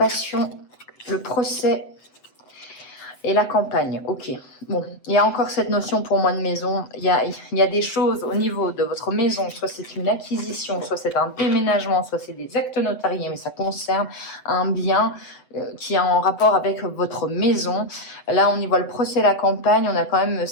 le procès et la campagne. Ok. Bon, il y a encore cette notion pour moi de maison. Il y a des choses au niveau de votre maison, soit c'est une acquisition, soit c'est un déménagement, soit c'est des actes notariés, mais ça concerne un bien qui est en rapport avec votre maison. Là, on y voit le procès, la campagne. On a quand même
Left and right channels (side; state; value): right; late; 7.9 ms